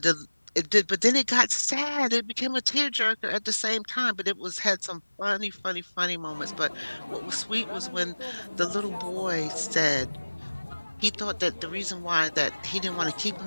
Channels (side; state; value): both; inverted; correlation -1.00